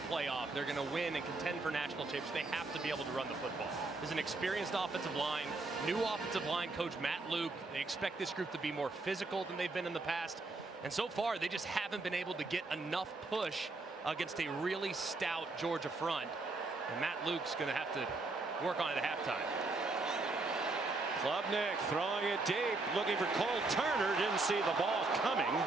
playoff. They're going to win and contend for national championships. They have to be able to run the football. There's an experienced offensive line, new offensive line coach Matt Luke. They expect this group to be more physical than they've been in the past. And so far, they just haven't been able to get enough push against a really stout Georgia front. And Matt Luke's going to have to work on it at halftime. Klubnik throwing it deep, looking for Cole Turner. Didn't see the ball coming.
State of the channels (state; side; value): quieter; left; 3.4 dB